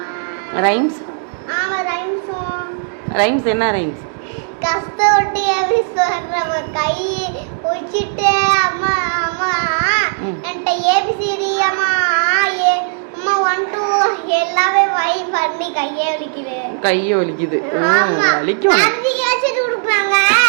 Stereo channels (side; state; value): left; silent; digital silence